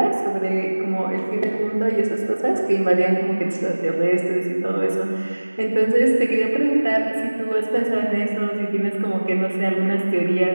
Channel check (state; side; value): inverted; both; correlation -1.00